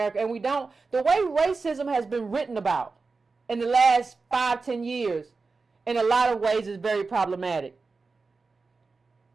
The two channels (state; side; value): quieter; left; 4.2 dB